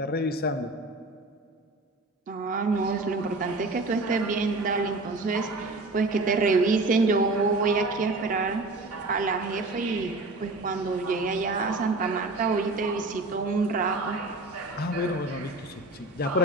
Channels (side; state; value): left; quieter; 3.1 dB